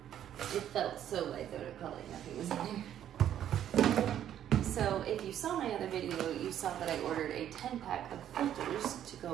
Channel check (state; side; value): quieter; left; 10.6 dB